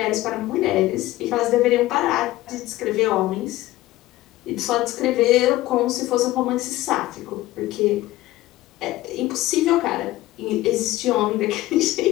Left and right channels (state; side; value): quieter; right; 16.7 dB